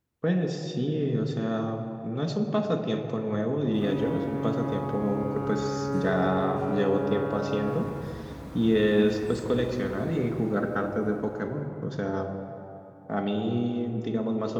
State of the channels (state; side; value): identical; both; correlation 1.00